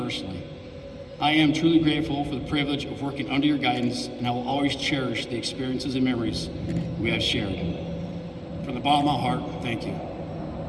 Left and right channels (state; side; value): identical; both; correlation 1.00